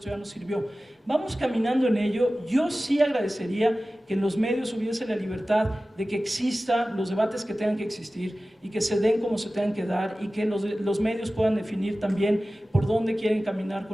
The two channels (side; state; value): both; normal; correlation 0.96